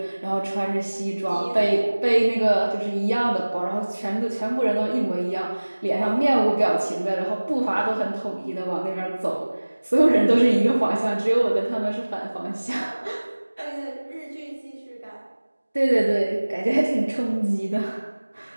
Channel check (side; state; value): both; inverted; correlation -1.00